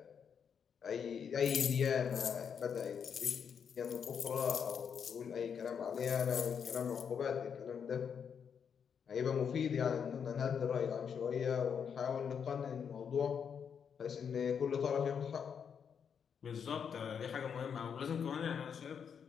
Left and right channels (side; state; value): right; quieter; 7.2 dB